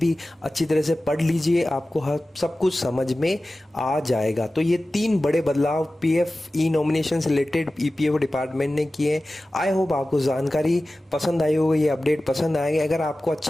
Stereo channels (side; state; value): both; normal; correlation 0.96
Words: अच्छी तरह से पढ़ लीजिए, आपको हर सब कुछ समझ में आ जाएगा। तो ये 3 बड़े बदलाव पीएफ ई नॉमिनेशन से रिलेटेड ईपीएफओ डिपार्टमेंट ने किए। आई होप आपको जानकारी पसंद आई होगी, ये अपडेट पसंद आएंगे। अगर आपको